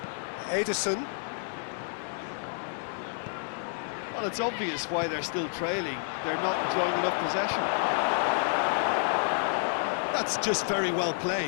Ederson. Well, it's obvious why they're still trailing. They're not enjoying enough possession. That's just very well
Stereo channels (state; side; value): silent; right; 58 dB below the other